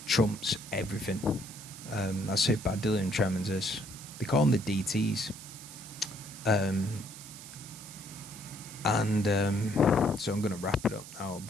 trumps everything. That's how bad delirium tremens is. They call them the DTs. So I'm going to wrap it up now,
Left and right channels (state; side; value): noise; right; hiss, 14 dB below the sound